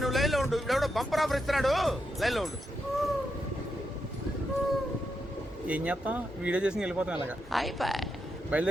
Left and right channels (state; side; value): normal; both; correlation 0.84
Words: నువ్వు లైన్లో ఉండు. ఇప్పుడు బంపర్ ఆఫర్ ఇస్తున్నాడు, లైన్లో ఉండు. ఏం చేస్తాం, వీడియో చేసి వెళ్ళిపోతాం ఇలాగా.